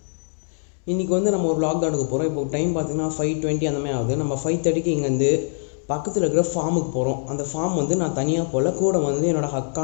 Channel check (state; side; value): silent; right; 59 dB below the other